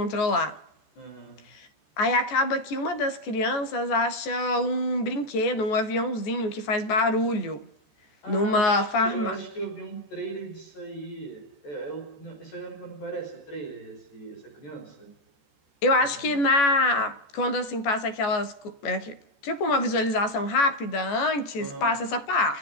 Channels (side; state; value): right; late; 14 ms